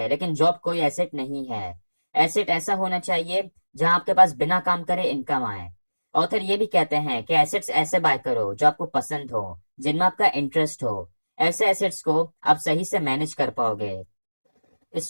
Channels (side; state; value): both; inverted; correlation -1.00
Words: लेकिन जॉब कोई एसेट नहीं है। एसेट ऐसा होना चाहिए जहां आपके पास बिना काम करे इनकम आए। ऑथर ये भी कहते हैं कि एसेट्स ऐसे बाय करो जो आपको पसंद हो, जिनमें आपका इंटरेस्ट हो। ऐसे एसेट्स को आप सही से मैनेज कर पाओगे। इस